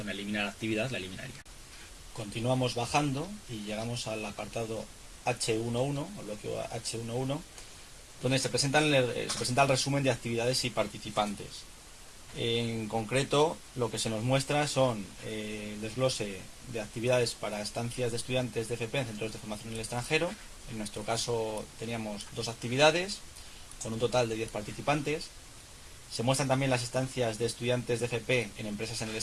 eliminar actividad, la eliminaría. Continuamos bajando y llegamos al apartado H11, o bloque H11, donde se presenta el resumen de actividades y participantes. En concreto, lo que se nos muestra son el desglose de actividades para estancias de estudiantes de FP en centros de formación en el extranjero. En nuestro caso teníamos 2 actividades, con un total de 10 participantes. Se muestran también las estancias de estudiantes de FP en empresas en el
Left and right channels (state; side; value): identical; both; correlation 1.00